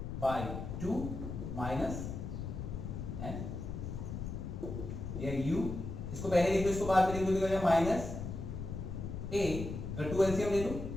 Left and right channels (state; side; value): noise; left; rumble, 6 dB below the sound